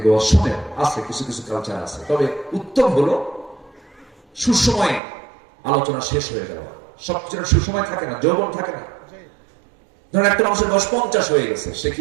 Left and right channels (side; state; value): left; drops out; at 5.0 s